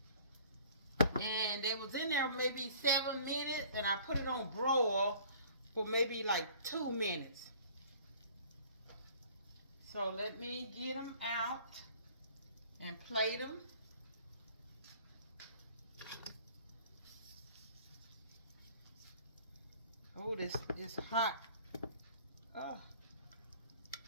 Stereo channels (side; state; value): both; inverted; correlation -0.51